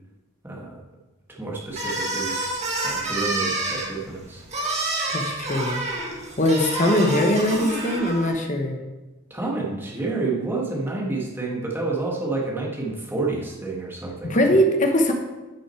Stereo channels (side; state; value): both; normal; correlation 0.41